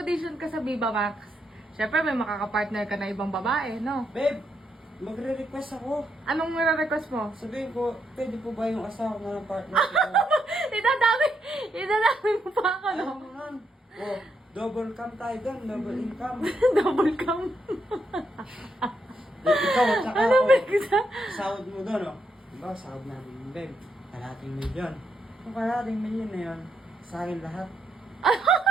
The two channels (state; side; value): normal; both; correlation 0.79